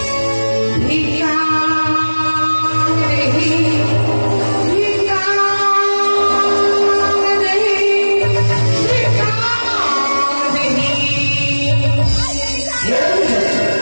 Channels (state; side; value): inverted; both; correlation -1.00